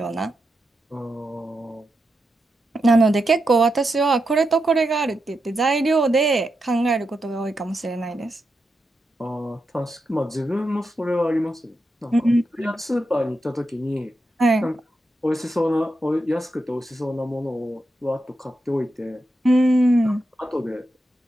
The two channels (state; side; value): normal; both; correlation 0.86